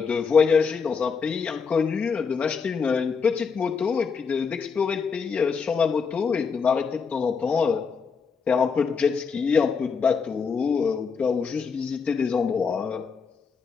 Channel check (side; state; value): right; quieter; 5.6 dB